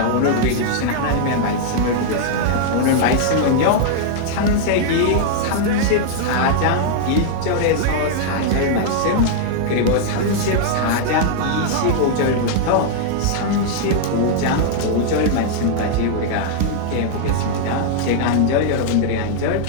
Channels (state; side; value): different; both; correlation -0.01